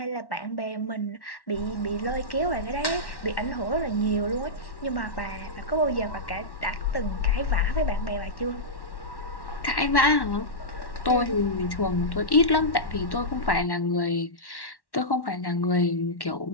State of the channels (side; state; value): right; late; 1.1 ms